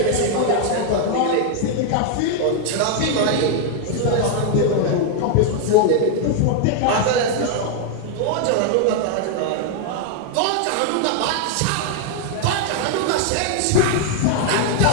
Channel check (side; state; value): both; different; correlation 0.00